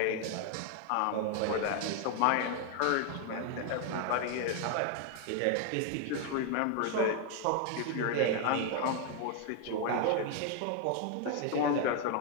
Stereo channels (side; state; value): both; different; correlation 0.01